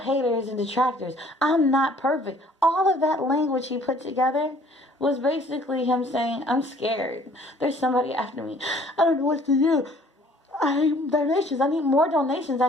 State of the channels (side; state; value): both; normal; correlation 0.56